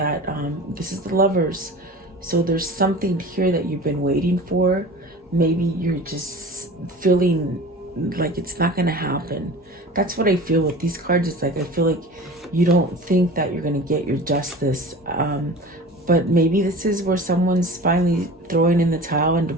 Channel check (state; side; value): normal; both; correlation 0.37